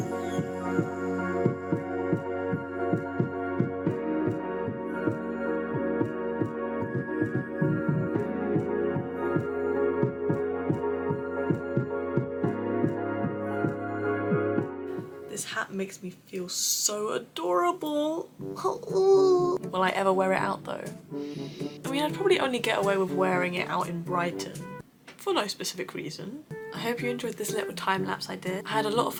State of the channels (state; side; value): identical; both; correlation 1.00